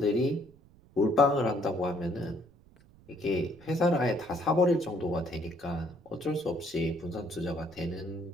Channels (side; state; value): right; noise; rumble, 26 dB below the sound